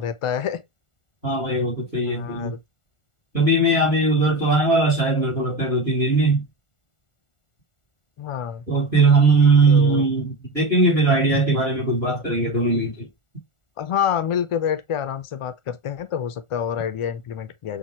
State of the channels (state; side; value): late; right; 1.4 ms